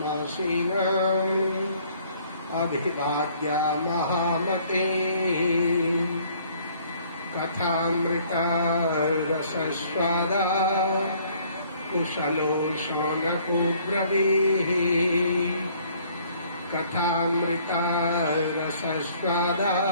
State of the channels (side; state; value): both; inverted; correlation -0.60